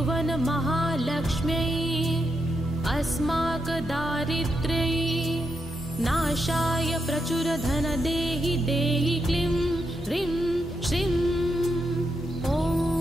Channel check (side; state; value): both; normal; correlation 0.83